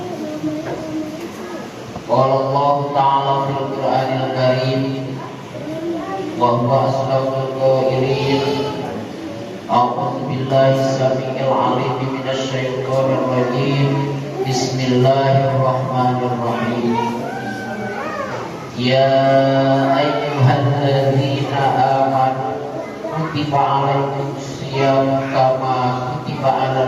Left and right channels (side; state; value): both; identical; correlation 1.00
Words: Qala Allah ta'ala fil Qur'anil Karim wa huwa asdaqul qailin. A'udzu billahi samii'il 'aliim minasy syaithaanir rajiim. Bismillahirrahmanirrahim. Ya ayyuhalladzina amanu kutiba 'alaikumus shiyam kama kutiba